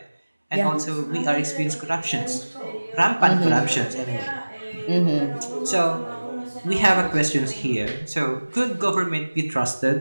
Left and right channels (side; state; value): both; inverted; correlation -1.00